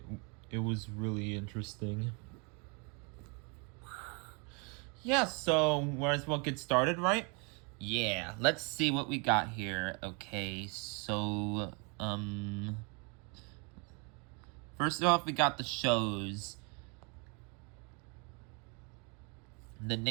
it was really interesting. Yeah, so might as well get started, right? Yeah, let's see what we got here. Okay, so first off we got the shows. The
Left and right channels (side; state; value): left; quieter; 33.2 dB